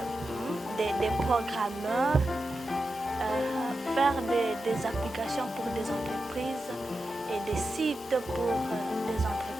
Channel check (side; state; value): both; normal; correlation 0.90